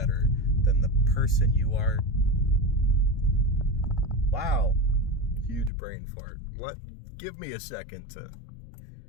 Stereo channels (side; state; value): right; drops out; at 5.7 s